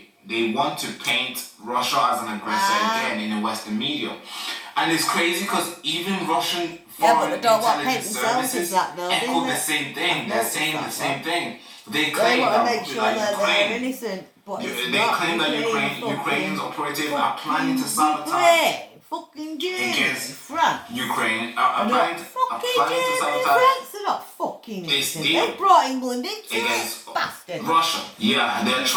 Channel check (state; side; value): identical; both; correlation 1.00